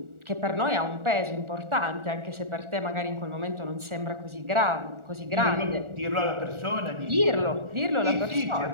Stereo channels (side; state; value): left; late; 1.4 ms